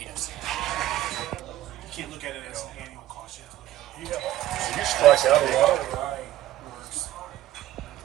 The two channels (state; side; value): quieter; left; 14.0 dB